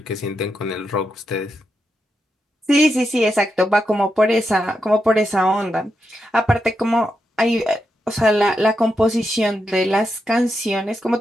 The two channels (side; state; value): both; normal; correlation 0.85